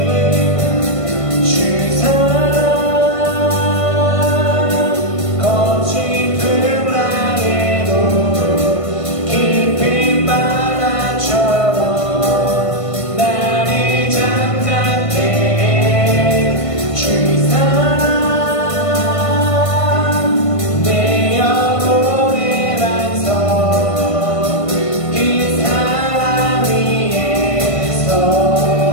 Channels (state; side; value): late; right; 1.5 ms